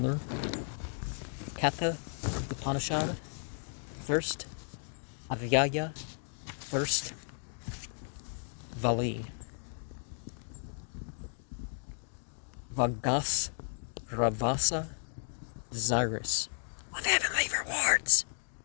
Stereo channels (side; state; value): right; silent; digital silence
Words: Katha Upanishad, first Avyaya, first Vali. Vagas Ravasa, desirous of heavenly rewards,